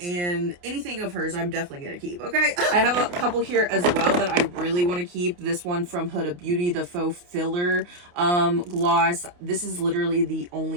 and anything of hers I'm definitely gonna keep. Okay, I have a couple here as well that I really want to keep. This one from Huda Beauty, the faux filler gloss. This is literally the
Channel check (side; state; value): left; late; 28 ms